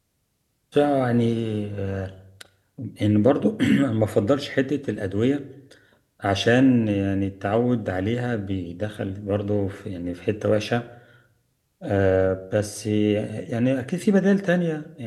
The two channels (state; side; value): identical; both; correlation 1.00